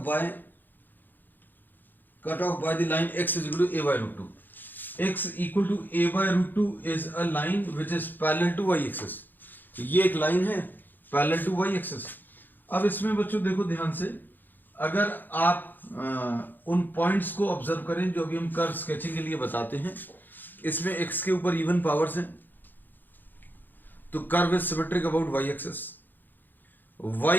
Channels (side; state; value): right; late; 0.089 ms